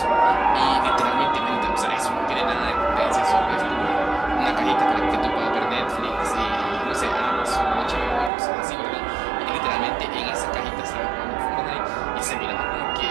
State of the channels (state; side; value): drops out; left; at 8.3 s